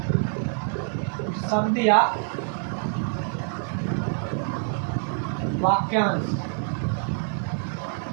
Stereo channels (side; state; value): left; silent; 56 dB below the other